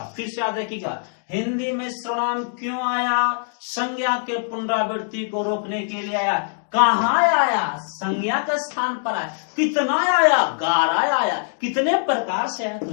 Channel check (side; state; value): right; silent; digital silence